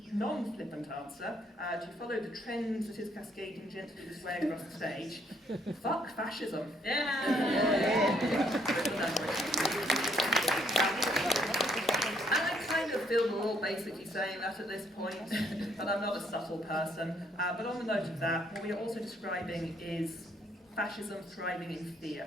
Non-flippant answer, to follow the trends that is cascading gently this way across the stage. Fuck fascism. Yeah. I kind of feel we're all basically saying that at this point, but I'm not a subtle person. But on the note of that, what we are also describing is fascism thriving in fear.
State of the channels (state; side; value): normal; both; correlation 0.69